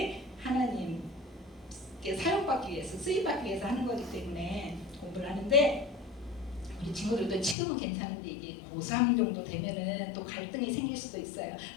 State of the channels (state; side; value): drops out; right; at 7.6 s